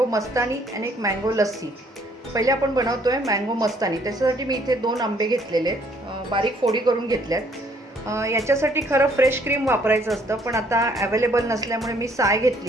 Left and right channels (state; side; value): normal; both; correlation 0.63